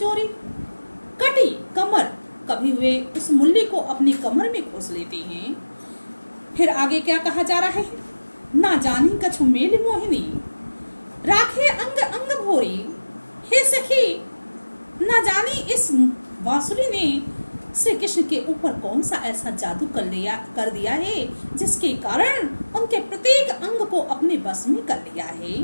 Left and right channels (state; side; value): inverted; both; correlation -1.00